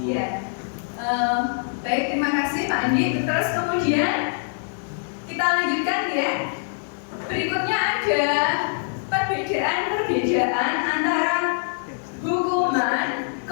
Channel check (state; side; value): silent; right; digital silence